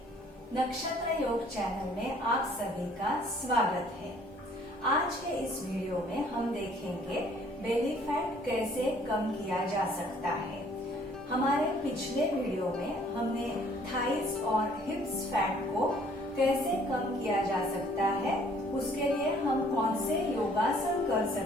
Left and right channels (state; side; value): normal; both; correlation 0.59